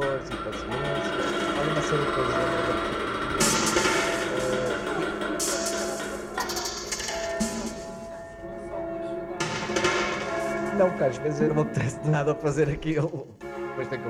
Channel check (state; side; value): identical; both; correlation 1.00